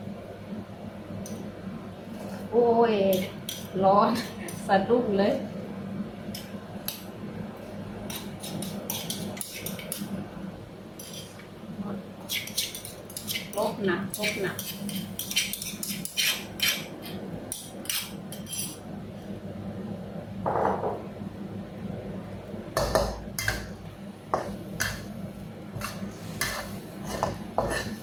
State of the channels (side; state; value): both; identical; correlation 1.00